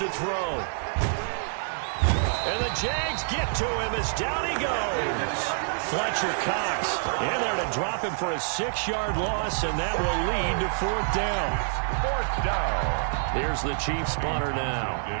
throw. And the Jags get to him as down he goes. Fletcher Cox in there to drop him for a 6-yard loss, and that will lead to 4th down. 4th down. Here's the Chiefs punter now,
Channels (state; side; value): silent; left; 60 dB below the other